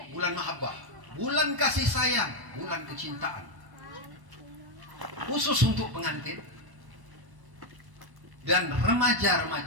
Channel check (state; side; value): late; left; 1.1 ms